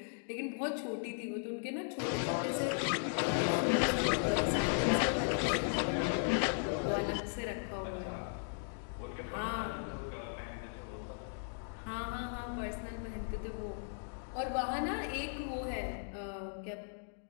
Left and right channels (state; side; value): silent; right; digital silence